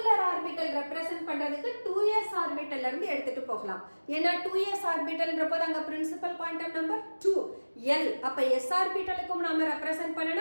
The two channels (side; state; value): both; inverted; correlation -1.00